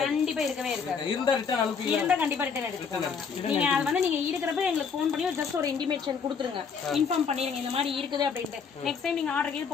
கண்டிப்பா இருக்கவே இருக்காது. இருந்தா ரிட்டர்ன் அனுப்பி இருந்தா கண்டிப்பா ரிட்டர்ன் எடுத்துக்கோங்க. நீங்க அது வந்து நீங்க இருக்கிறப்ப எங்களுக்கு ஃபோன் பண்ணி ஜஸ்ட் ஒரு இன்டிமேஷன் கொடுத்துருங்க, இன்ஃபார்ம் பண்ணிருங்க இந்த மாதிரி இருக்குது அப்படின்ட்டு. நெக்ஸ்ட் டைம் நீங்க ஆர்டர் கீழ்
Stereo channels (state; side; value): quieter; right; 6.0 dB